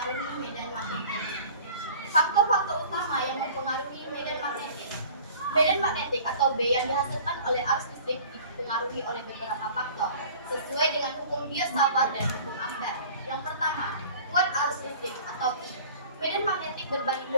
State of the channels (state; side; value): inverted; both; correlation -0.46